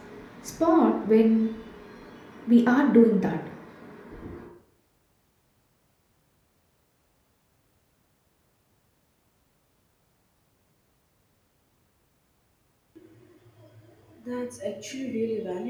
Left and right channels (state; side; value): identical; both; correlation 1.00